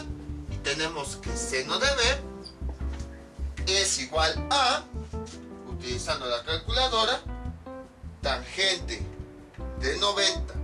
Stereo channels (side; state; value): both; identical; correlation 1.00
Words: Y tenemos que seno de B es igual a, utilizando la calculadora, tangente de 90